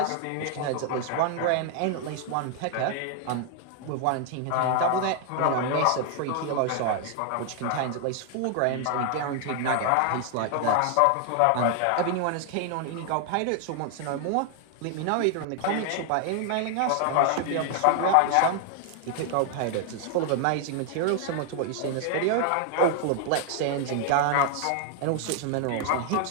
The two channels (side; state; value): both; different; correlation 0.00